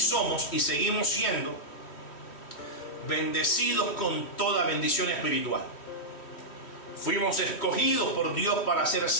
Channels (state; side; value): late; right; 3.1 ms